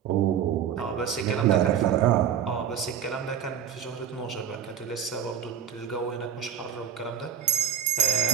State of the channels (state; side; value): quieter; left; 8.8 dB